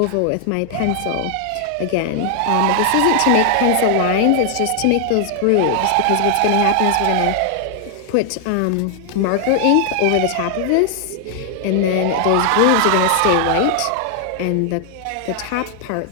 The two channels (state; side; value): different; both; correlation 0.00